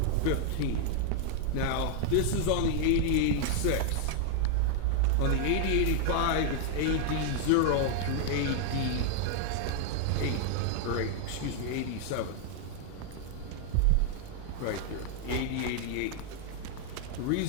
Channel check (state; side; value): different; both; correlation 0.00